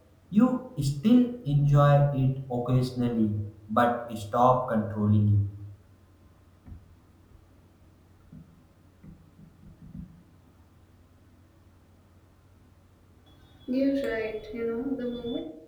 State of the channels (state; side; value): identical; both; correlation 1.00